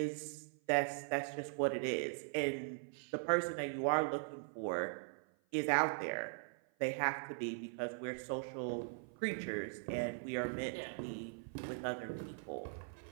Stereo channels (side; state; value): left; silent; 51 dB below the other